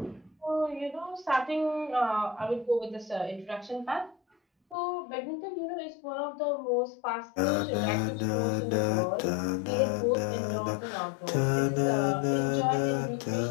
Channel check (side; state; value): right; drops out; at 4.8 s